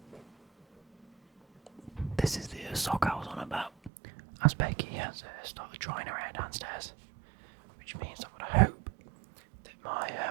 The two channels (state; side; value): drops out; left; at 3.9 s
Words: this is the sock I was on about, as Becky has started drying her hair downstairs, which means I would hope that my